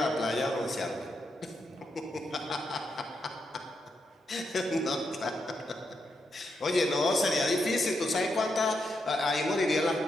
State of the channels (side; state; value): both; normal; correlation 0.83